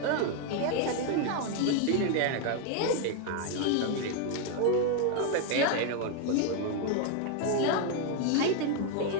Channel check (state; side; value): different; both; correlation 0.00